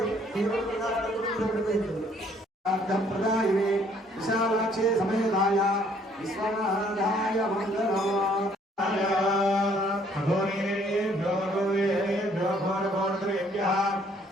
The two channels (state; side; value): normal; both; correlation 0.63